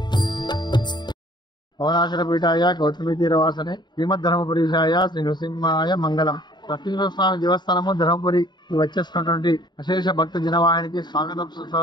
పవనాచలపీఠాయ గౌతమి తీరవాసనే శ్రీమద్ధర్మపురీశాయ శ్రీ నృసింహాయ మంగళం. లక్ష్మీనరసింహ స్వామి దేవస్థానము ధర్మపురి వచ్చేస్తున్నటువంటి అశేష భక్త జనవాహినికి స్వాగతం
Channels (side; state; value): right; late; 0.21 ms